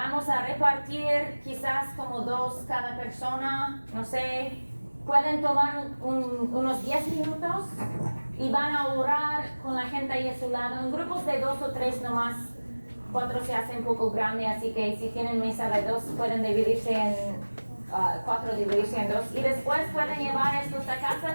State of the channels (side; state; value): both; inverted; correlation -1.00